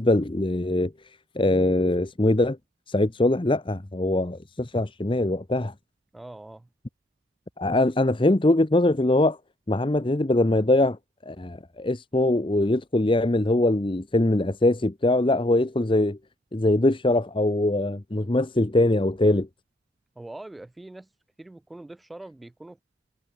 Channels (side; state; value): both; normal; correlation 0.68